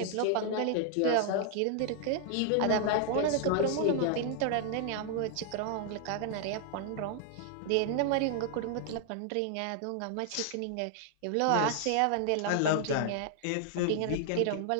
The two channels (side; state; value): both; different; correlation 0.00